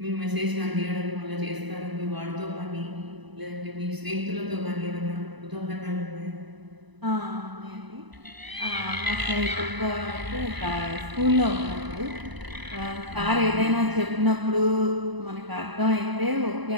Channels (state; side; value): late; left; 1.0 ms